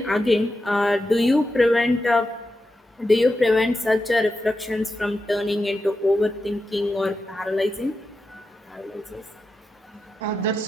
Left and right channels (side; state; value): both; normal; correlation 0.89